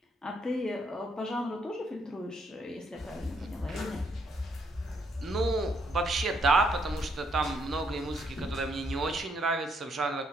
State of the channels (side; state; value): both; normal; correlation 0.73